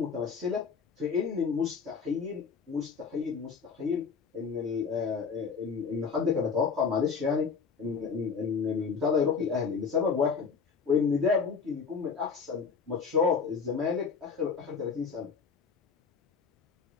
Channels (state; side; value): quieter; right; 5.6 dB